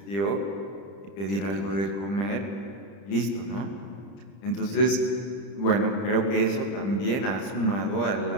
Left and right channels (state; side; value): late; right; 30 ms